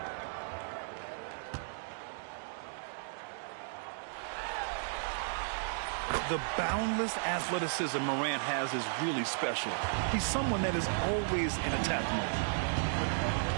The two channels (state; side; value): silent; left; digital silence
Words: The boundless athleticism Morant has is really special. He's someone that is always in attack mode.